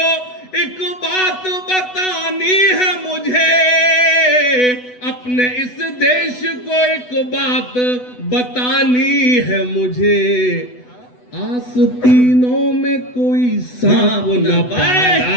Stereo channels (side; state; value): right; late; 8.1 ms